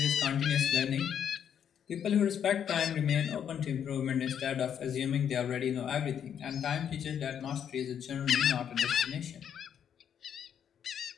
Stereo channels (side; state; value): right; quieter; 8.7 dB